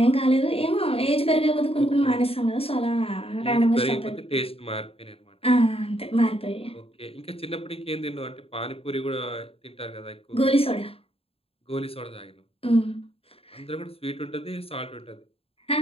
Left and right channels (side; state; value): right; late; 0.28 ms